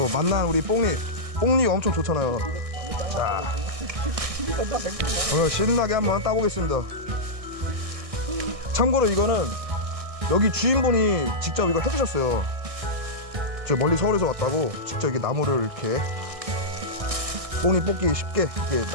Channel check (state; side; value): late; left; 1.6 ms